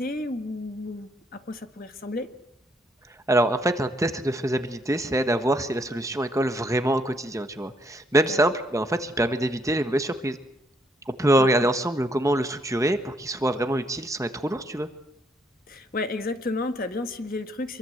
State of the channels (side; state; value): both; normal; correlation 0.70